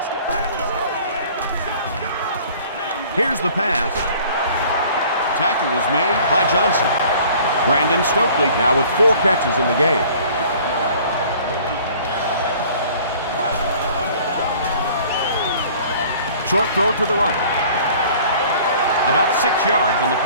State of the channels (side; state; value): both; inverted; correlation -0.51